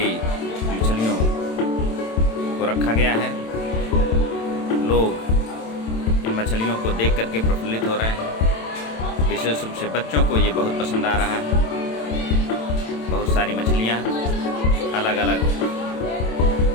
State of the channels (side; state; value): right; late; 27 ms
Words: मछलियों को रखा गया है। लोग इन मछलियों को देख करके प्रफुल्लित हो रहे हैं। विशेष रूप से बच्चों को ये बहुत पसंद आ रहा है। बहुत सारी मछलियाँ अलग अलग